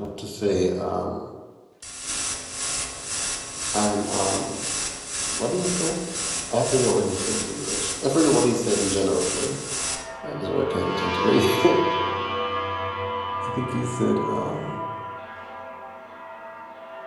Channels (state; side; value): identical; both; correlation 1.00